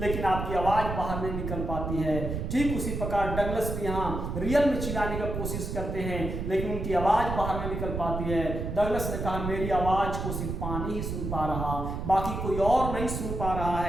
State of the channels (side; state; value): right; noise; rumble, 4 dB below the sound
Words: आपकी आवाज बाहर नहीं निकल पाती है। ठीक उसी प्रकार डगलस भी यहाँ रियल में चिल्लाने का कोशिश करते हैं, लेकिन उनकी आवाज बाहर नहीं निकल पाती है। डगलस ने कहा मेरी आवाज को सिर्फ पानी ही सुन पा रहा, बाकी कोई और नहीं सुन पा रहा